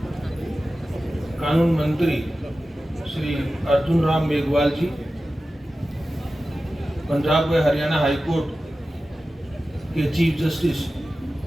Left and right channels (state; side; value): normal; both; correlation 0.94